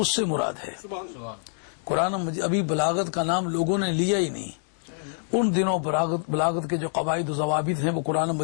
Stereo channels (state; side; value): silent; right; 61 dB below the other